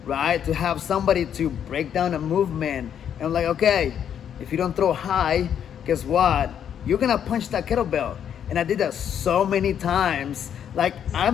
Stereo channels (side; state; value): right; quieter; 8.9 dB